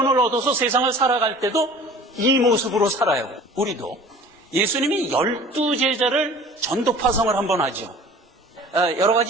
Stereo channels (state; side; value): normal; both; correlation 0.45